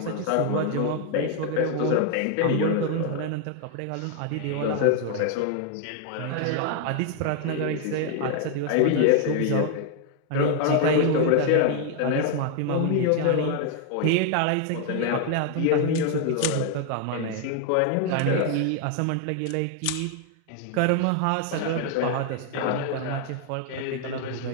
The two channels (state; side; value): different; both; correlation 0.00